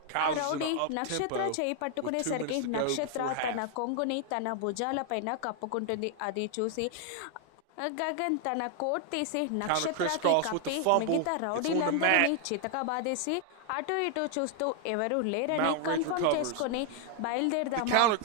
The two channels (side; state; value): both; different; correlation 0.00